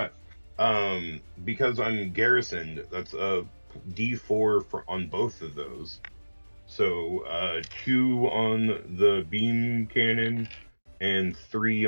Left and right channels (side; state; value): both; inverted; correlation -1.00